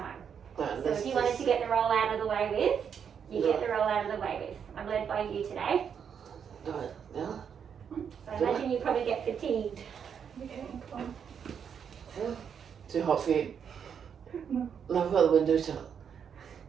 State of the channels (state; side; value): quieter; left; 7.5 dB